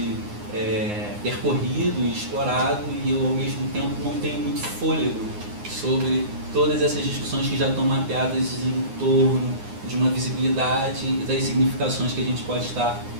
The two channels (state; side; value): late; left; 9.7 ms